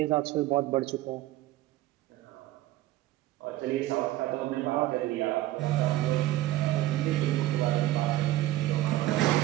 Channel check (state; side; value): quieter; left; 15.7 dB